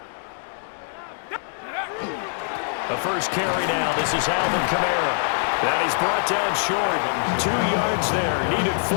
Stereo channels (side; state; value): right; silent; digital silence